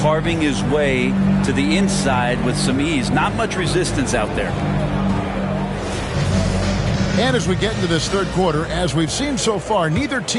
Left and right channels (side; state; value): both; identical; correlation 1.00